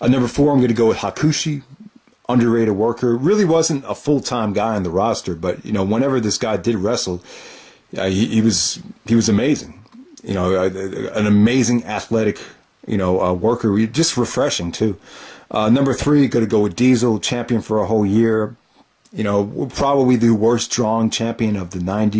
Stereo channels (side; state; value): both; identical; correlation 1.00